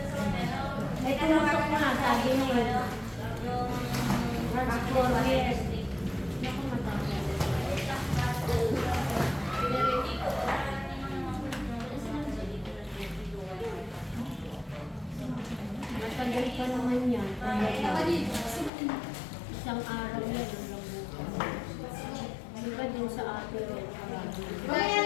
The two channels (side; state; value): right; drops out; at 18.7 s